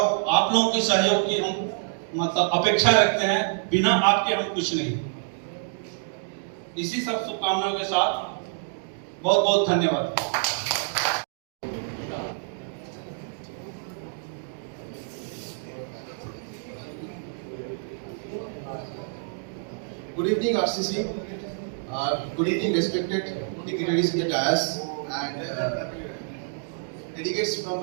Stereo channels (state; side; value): silent; left; digital silence